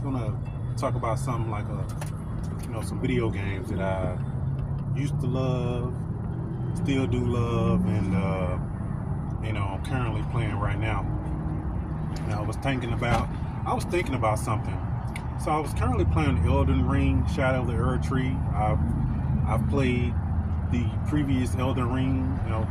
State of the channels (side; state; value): both; identical; correlation 1.00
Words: gonna talk about something like some video games that I used to love, still do love, and I'm currently playing right now. And I was thinking about something. So I was currently playing Elden Ring, Shadow of the Earth Tree. I've played the previous Elden Ring,